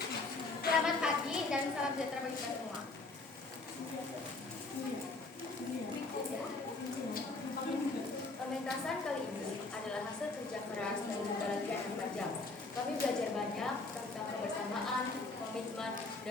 Selamat pagi dan salam sejahtera bagi kita semua. Pementasan kali ini adalah hasil kerja keras dan juga latihan yang tajam. Kami belajar banyak tentang kebersamaan, komitmen,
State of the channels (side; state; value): right; quieter; 3.5 dB